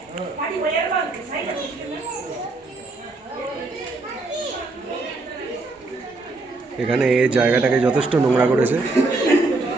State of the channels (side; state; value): left; quieter; 3.3 dB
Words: এখানে এই জায়গাটাকে যথেষ্ট নোংরা করেছে,